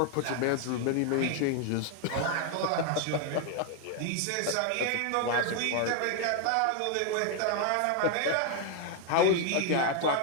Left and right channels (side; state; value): both; different; correlation 0.01